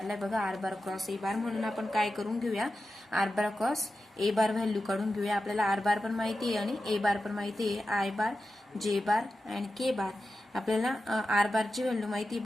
बघा आर बार क्रॉस ए बार म्हणून आपण काय करून घेऊया. R bar cross A bar value काढून घेऊया. आपल्याला आर बार पण माहिती आहे आणि ए बार पण माहिती आहे. I bar J bar and K बार. आपल्याला आर बारची व्हॅल्यू माहिती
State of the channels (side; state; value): both; normal; correlation 0.92